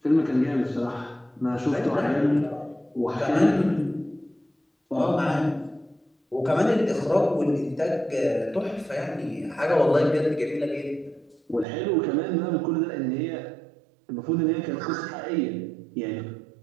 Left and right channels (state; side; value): drops out; left; at 11.7 s